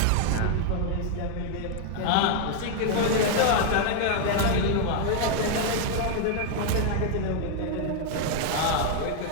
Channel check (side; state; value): both; different; correlation 0.00